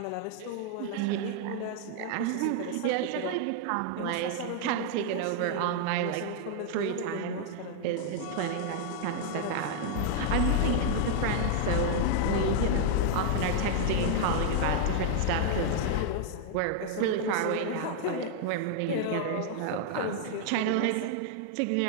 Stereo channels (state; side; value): different; both; correlation 0.00